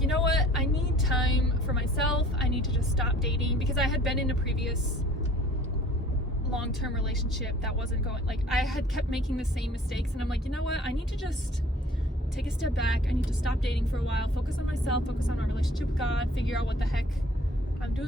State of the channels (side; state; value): both; normal; correlation 0.52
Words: you know what? I need time for myself. I need to just stop dating, because I had been in a previous long-term relationship that wasn't going, like, I had kept making the same mistakes, and I'm like, you know what? I need to just take a step back. I need to stop dating for a while, focus on myself, focus on my relationship with God, figure out what the heck I'm